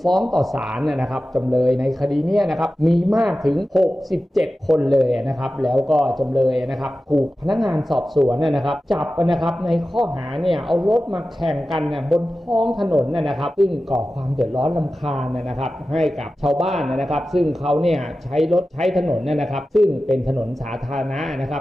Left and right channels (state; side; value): normal; both; correlation 0.94